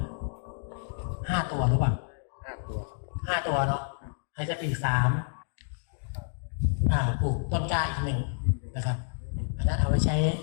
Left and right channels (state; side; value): silent; right; digital silence